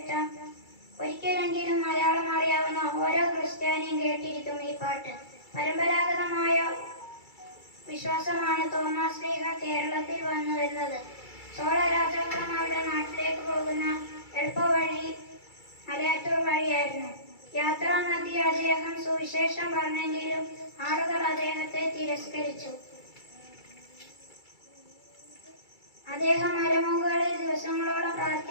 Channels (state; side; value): late; right; 2.3 ms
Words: ഒരിക്കലെങ്കിലും മലയാളം അറിയാവുന്ന ഓരോ ക്രിസ്ത്യാനിയും കേട്ടിരിക്കും ഈ പാട്ട്. പരമ്പരാഗതമായ വിശ്വാസമാണ് തോമസ് ശ്ലീഹ കേരളത്തിൽ വന്നു വരുന്നത്. ചോള രാജാക്കന്മാരുടെ നാട്ടിലേക്ക് പോകുന്ന എളുപ്പവഴി മലയാറ്റൂർ വഴിയായിരുന്നു. യാത്രാമധ്യേ അദ്ദേഹം സുവിശേഷം പറഞ്ഞെങ്കിലും ആളുകൾ അദ്ദേഹത്തെ തിരസ്കരിച്ചു. അദ്ദേഹം മലമുകളിൽ ദിവസങ്ങളോളം